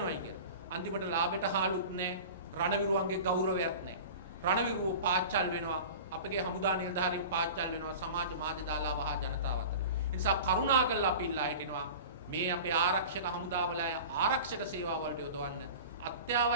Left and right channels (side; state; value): both; inverted; correlation -0.36